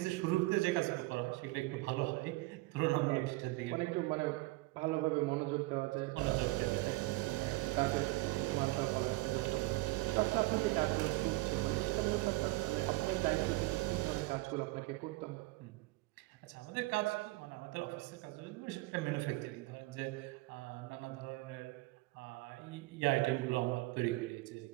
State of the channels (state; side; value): quieter; left; 21.8 dB